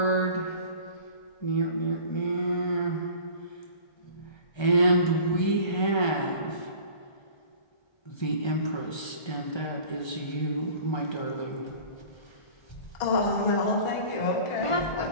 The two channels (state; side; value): late; right; 1.3 ms